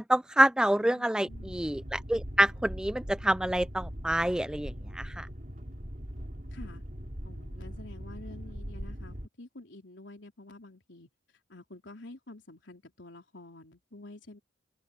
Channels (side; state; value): both; normal; correlation 0.95